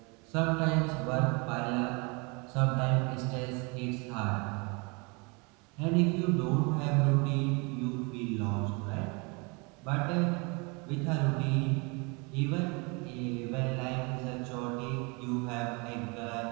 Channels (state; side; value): quieter; left; 30.3 dB